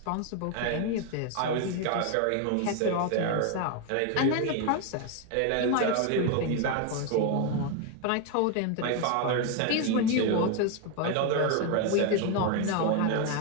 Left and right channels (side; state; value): both; different; correlation 0.01